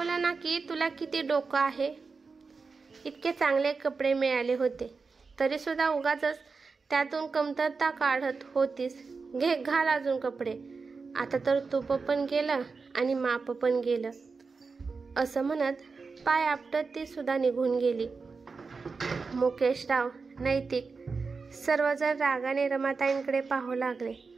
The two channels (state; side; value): quieter; left; 4.6 dB